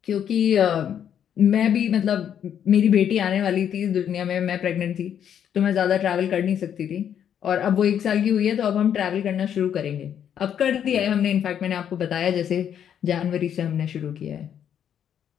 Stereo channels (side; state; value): right; quieter; 9.1 dB